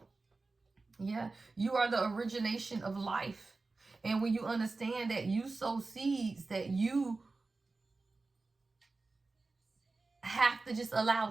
Yeah, you are the origination of life. And when you understand that you sow seeds, that you have to just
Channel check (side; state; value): left; quieter; 3.7 dB